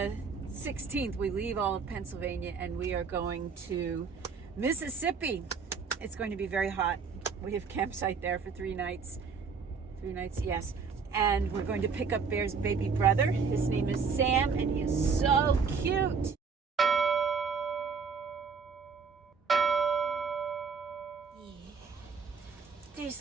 16th. We leave all of Pennsylvania and we are going to Mississippi. It's going to be very hot. We have campsite there for 3 nights. 3 nights, yes. And we're going to pick up Bear's baby brother. His name is Sam, and he is so cute. Yeah.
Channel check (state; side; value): quieter; left; 5.4 dB